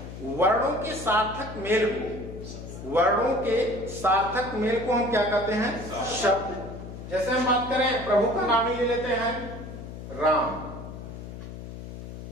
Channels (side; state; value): left; noise; hum, 11 dB below the sound